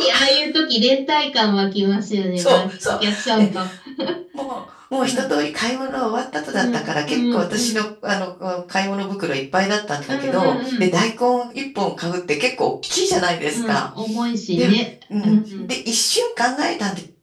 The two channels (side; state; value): both; identical; correlation 1.00